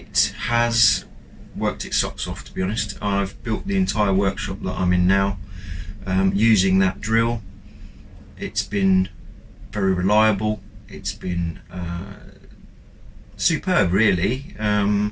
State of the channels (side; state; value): both; identical; correlation 1.00